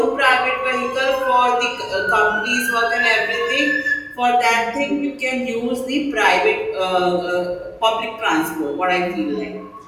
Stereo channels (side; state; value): both; identical; correlation 1.00